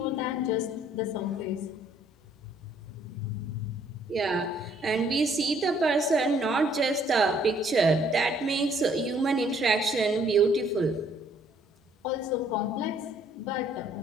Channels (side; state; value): both; normal; correlation 0.64